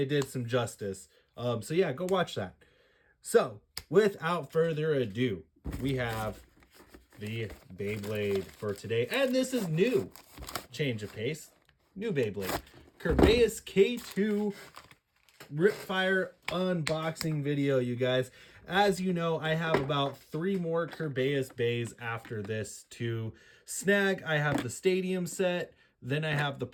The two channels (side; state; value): both; identical; correlation 1.00